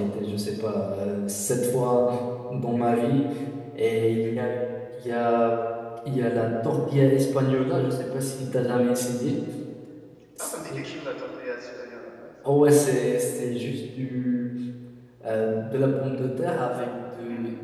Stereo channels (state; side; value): identical; both; correlation 1.00